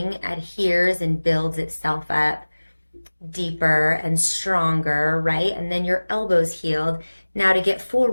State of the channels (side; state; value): both; inverted; correlation -1.00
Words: adheres and builds itself up deeper and stronger, right? And then your elbow's healed. Now, to get full